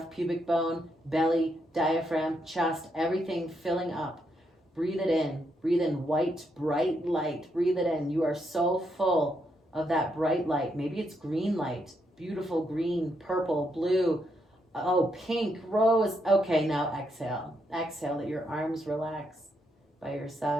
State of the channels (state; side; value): normal; both; correlation 0.79